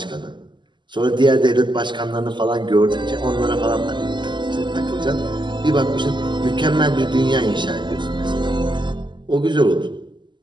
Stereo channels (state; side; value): late; left; 0.22 ms